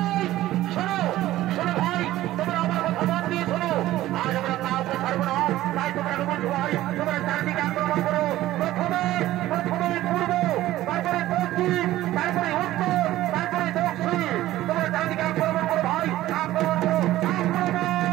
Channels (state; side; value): quieter; left; 15.1 dB